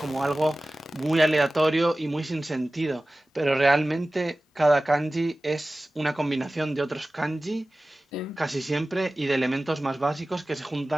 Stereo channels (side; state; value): both; normal; correlation 0.97